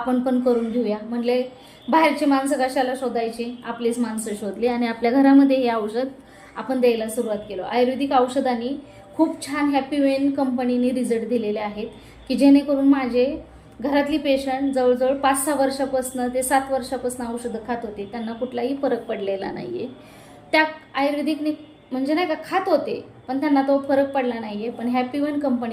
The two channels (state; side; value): identical; both; correlation 1.00